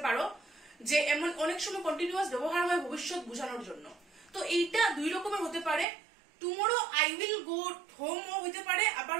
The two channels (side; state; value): left; drops out; at 5.9 s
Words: পারো। যে এমন অনেক সময় কন্টিনিউয়াস ব্যবহার হয় ভবিষ্যৎ বোঝানোর জন্য। তো এইটা দুই রকমের হতে পারে। Tomorrow I will go home ও হইতে পারে, আবার